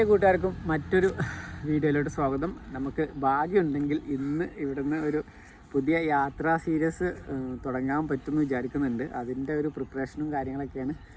കൂട്ടുകാർക്കും മറ്റൊരു വീഡിയോയിലോട്ട് സ്വാഗതം. നമുക്ക് ഭാഗ്യമുണ്ടെങ്കിൽ ഇന്ന് ഇവിടുന്ന് ഒരു പുതിയ യാത്രാ സീരീസ് തുടങ്ങാൻ പറ്റുമെന്ന് വിചാരിക്കുന്നുണ്ട്. അതിൻ്റെ ഒരു പ്രിപ്പറേഷനും കാര്യങ്ങളൊക്കെയാണ്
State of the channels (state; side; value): identical; both; correlation 1.00